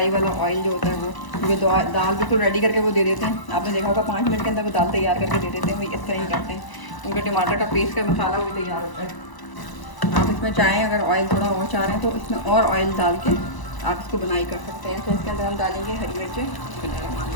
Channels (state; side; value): late; right; 1.0 ms